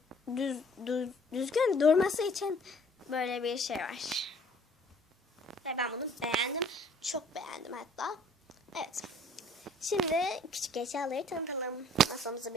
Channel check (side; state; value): both; normal; correlation 0.56